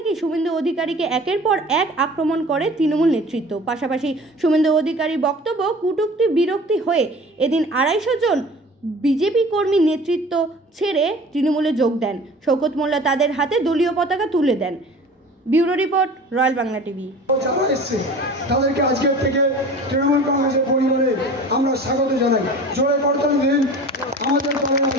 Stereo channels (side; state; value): both; normal; correlation 0.42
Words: শুভেন্দু অধিকারীকে একের পর এক আক্রমণ করে তৃণমূল নেতৃত্ব। পাশাপাশি শুভেন্দু অধিকারীর বক্তব্য কটূক্তি বিরক্তি হয়ে এদিন 250 জন বিজেপি কর্মী নেতৃত্ব ছেড়ে তৃণমূলে যোগ দেন। শওকত মোল্লা তাদের হাতে দলীয় পতাকা তুলে দেন। Bureau report, royal Bangla TV. তাদেরকে আজকের থেকে তৃণমূল কংগ্রেসের পরিবারে আমরা স্বাগত জানাই। জোরে করতালি দিন। আমাদের দলের